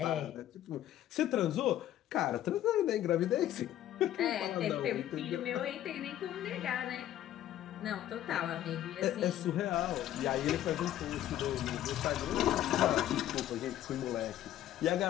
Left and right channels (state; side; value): quieter; right; 12.4 dB